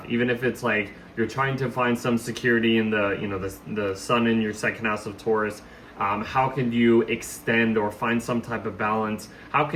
even if it's like you're trying to find some security in the sun in your second house of Taurus. How can you extend or find some type of balance? How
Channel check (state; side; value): identical; both; correlation 1.00